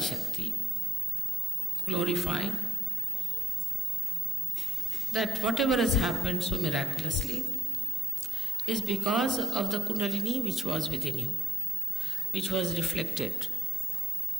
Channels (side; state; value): both; normal; correlation 0.76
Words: Shakti, glorifying that whatever has happened so miraculously is because of the Kundalini which was within you, which was reflected